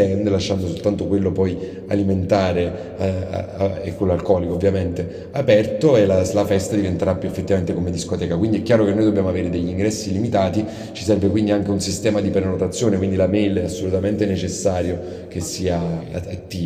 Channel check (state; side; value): identical; both; correlation 1.00